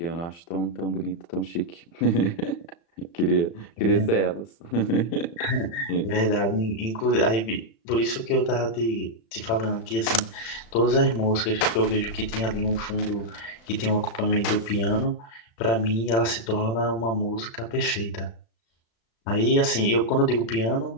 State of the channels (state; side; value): late; right; 35 ms